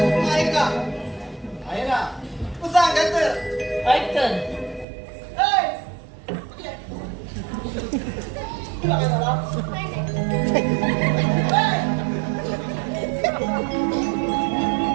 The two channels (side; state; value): left; drops out; at 4.9 s